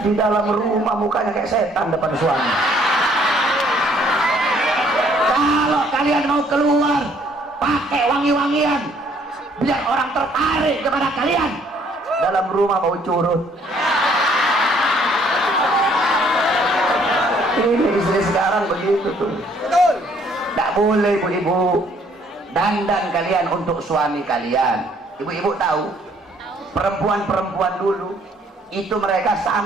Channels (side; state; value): both; normal; correlation 0.63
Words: Di dalam rumah mukanya kayak setan depan suami. Kalau kalian mau keluar, pakai wangi-wangian, biar orang tertarik kepada kalian. Dalam rumah mau curut. Ini istri sekarang begitu tuh. Tidak boleh ibu-ibu. Dandan kalian untuk suami kalian. Ibu-ibu tahu, perempuan-perempuan dulu itu mereka